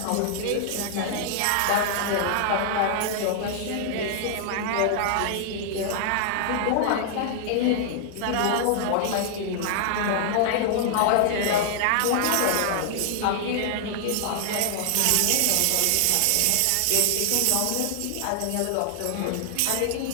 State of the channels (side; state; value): both; different; correlation 0.00